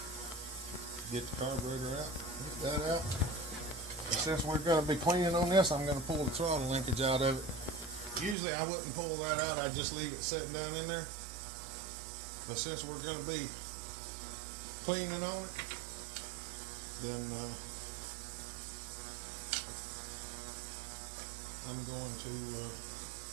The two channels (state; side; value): drops out; left; at 8.3 s